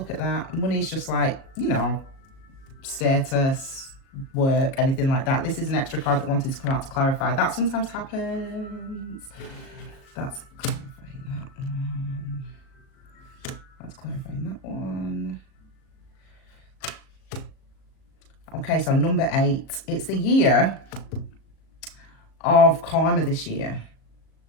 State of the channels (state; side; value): late; right; 37 ms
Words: at that. Money is just like, status, work, anything like that. This is an extra card that wanted to come out to clarify. That sometimes happens. That's clarifying that one. That's clarifying that one. Okay, so number 8. It's the year of karma this year.